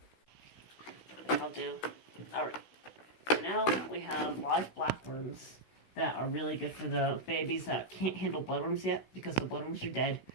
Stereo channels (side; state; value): right; late; 16 ms